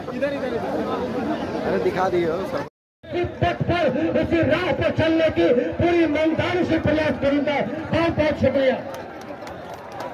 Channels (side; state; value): both; identical; correlation 1.00